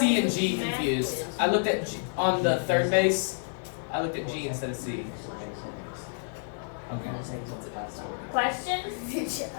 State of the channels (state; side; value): silent; right; digital silence